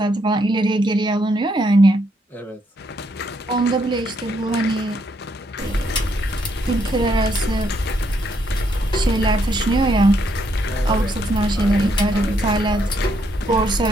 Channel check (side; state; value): both; normal; correlation 0.74